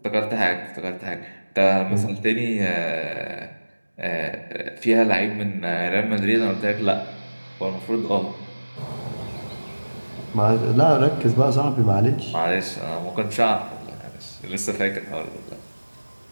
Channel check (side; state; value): both; inverted; correlation -1.00